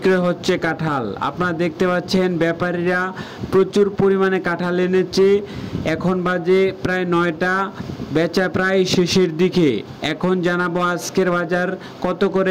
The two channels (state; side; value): identical; both; correlation 1.00